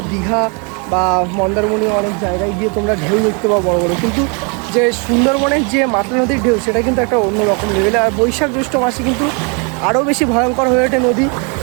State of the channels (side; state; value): left; quieter; 35.4 dB